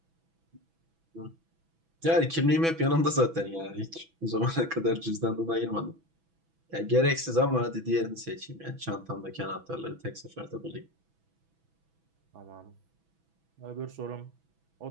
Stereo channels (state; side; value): late; left; 6.1 ms